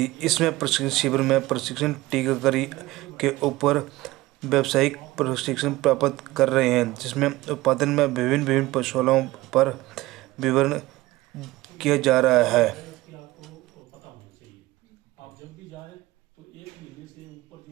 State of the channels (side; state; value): left; quieter; 18.8 dB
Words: इसमें प्रशिक्षण शिविर में प्रशिक्षण टीकाकरी के ऊपर व्यावसायिक प्रशिक्षण प्राप्त कर रहे हैं, जिसमें उत्पादन में विभिन्न पशुओं पर विवरण किया जा रहा है। आपको पता होना चाहिए। आप जब भी जाएं तो 1 महीने से ऊपर